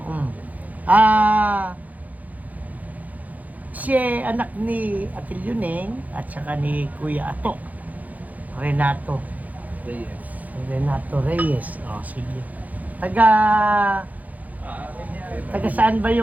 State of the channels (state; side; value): late; left; 0.078 ms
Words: Si anak ni Atil Yuneng at saka ni Kuya Ato. Renato Reyes. Sige. Taga saan ba